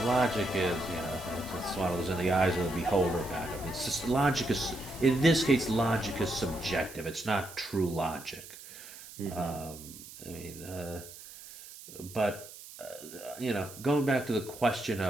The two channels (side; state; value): right; noise; hiss, 16 dB below the sound